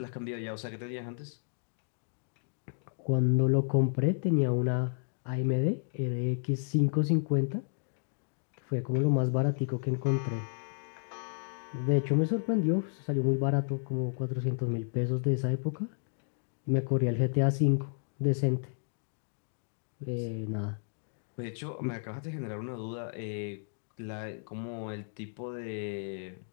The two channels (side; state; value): right; silent; digital silence